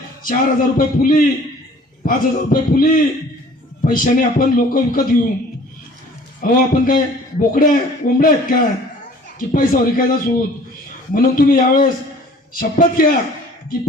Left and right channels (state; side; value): normal; both; correlation 0.51